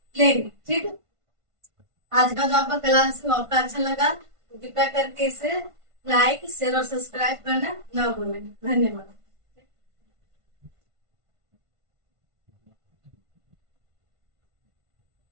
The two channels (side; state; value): left; late; 1.5 ms